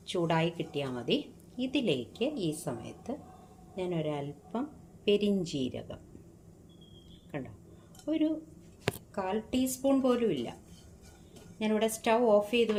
ചൂടായി കിട്ടിയാൽ മതി. ഇതിലേക്ക് ഈ സമയത്ത് ഞാൻ ഒരല്പം പെരിഞ്ജീരകം, കണ്ടോ, ഒരു 1/4 ടീസ്പൂൺ പോലും ഇല്ല. ഞാനിവിടെ സ്റ്റൗ ഓഫ് ചെയ്ത്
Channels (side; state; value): both; identical; correlation 1.00